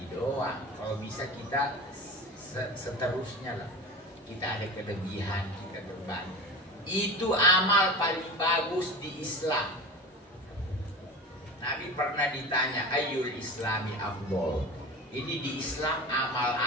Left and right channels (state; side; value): normal; both; correlation 0.31